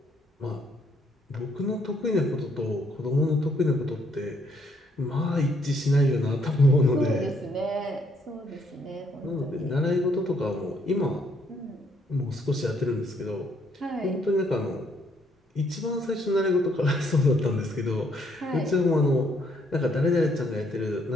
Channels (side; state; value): both; normal; correlation 0.69